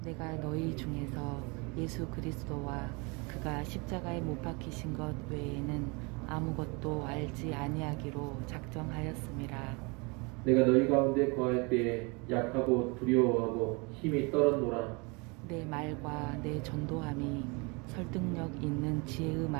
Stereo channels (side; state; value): left; quieter; 29.4 dB